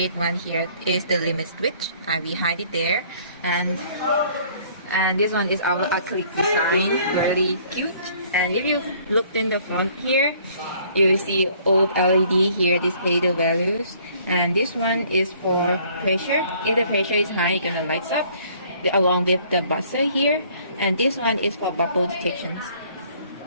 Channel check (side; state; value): both; inverted; correlation -0.58